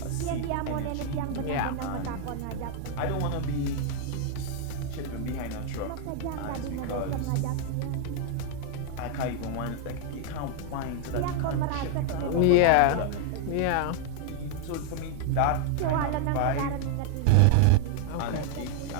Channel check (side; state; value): both; different; correlation 0.00